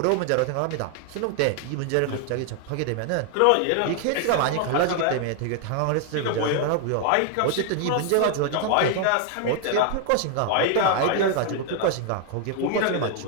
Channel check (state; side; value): different; both; correlation 0.00